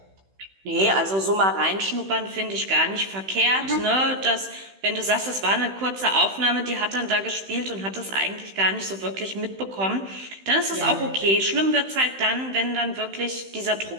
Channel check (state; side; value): late; left; 16 ms